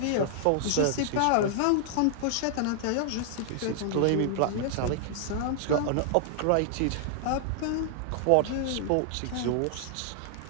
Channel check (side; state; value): both; different; correlation -0.01